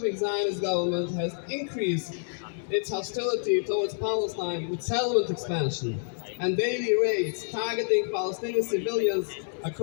Zionist government has increased its hostility towards Palestine with settlement expansion and daily raids targeting Palestinian civilians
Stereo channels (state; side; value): silent; right; 59 dB below the other